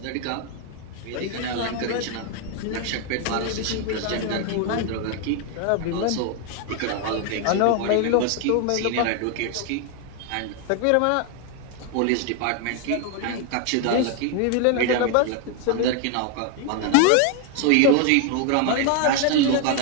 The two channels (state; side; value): different; both; correlation 0.01